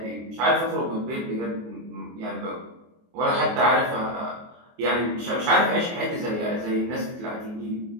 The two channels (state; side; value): late; left; 24 ms